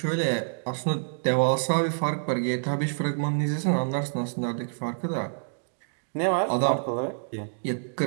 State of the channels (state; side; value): silent; left; digital silence